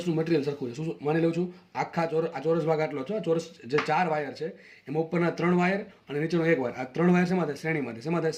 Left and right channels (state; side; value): identical; both; correlation 1.00